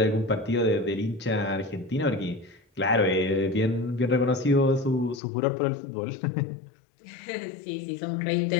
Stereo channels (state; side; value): drops out; right; at 5.2 s